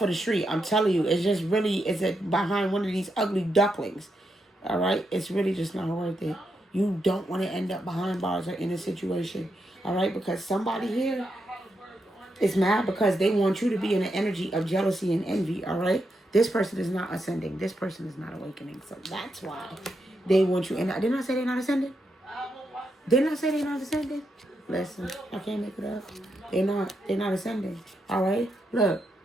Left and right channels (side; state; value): both; normal; correlation 0.83